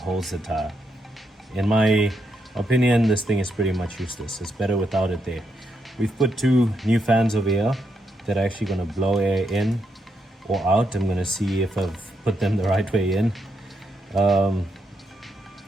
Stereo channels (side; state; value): both; normal; correlation 0.80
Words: the tire. In my opinion, this thing is pretty much useless. It's better without it there. We've put two new fans over here that are actually going to blow air in or out. I'm going to see if I've put them the right way in. I